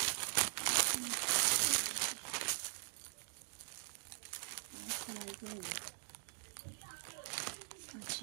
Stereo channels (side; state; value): left; silent; digital silence